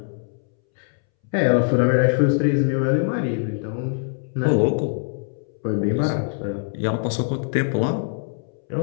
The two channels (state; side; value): silent; right; 63 dB below the other